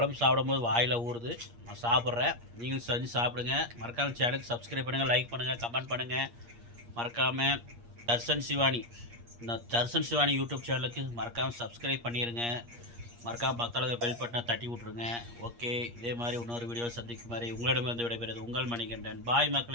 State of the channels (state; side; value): late; left; 8.5 ms